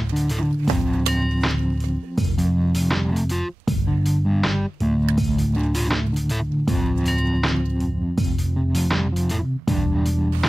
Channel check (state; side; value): normal; both; correlation 0.97